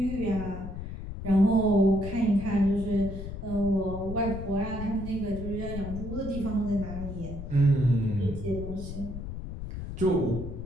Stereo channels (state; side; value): noise; left; rumble, 8 dB below the sound